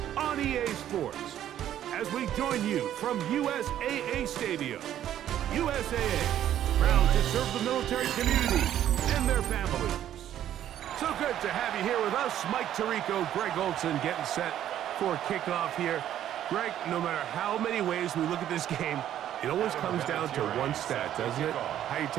on EA Sports. As we join you from USAA Stadium, USAA, proud to serve the military community and their families. So good to have you here with us. Mike Tirico, Greg Olson getting set for kickoff here. Greg, no matter how many ways we look at this game, it always comes down to one stat, doesn't it? How you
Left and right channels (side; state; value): left; quieter; 11.3 dB